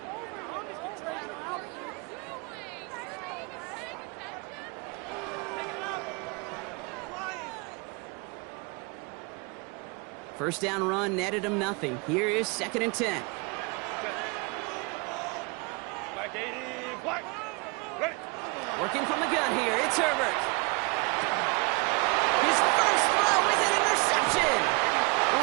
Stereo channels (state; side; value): quieter; left; 29.7 dB